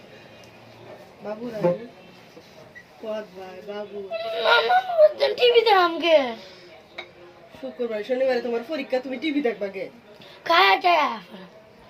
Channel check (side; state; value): both; identical; correlation 1.00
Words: বাবু রাই পদ ভাই বাবু টিভি দেখামকে শুক্রবার শনিবারে তোমার পরীক্ষা তুমি টিভি দেখবা গে খায়া টায়া